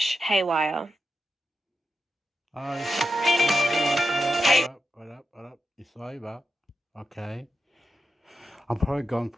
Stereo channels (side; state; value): both; normal; correlation 0.87